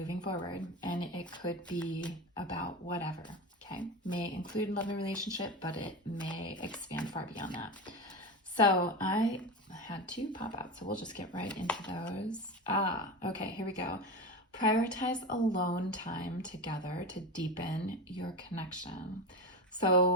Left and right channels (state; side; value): normal; both; correlation 0.23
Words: forward. And it could be about whatever, okay? May include love and relationship, but it may expand far beyond that. So I had two pop out, so we'll just get right into those. Okay, here we go. Prioritize alone time together to deepen your connection.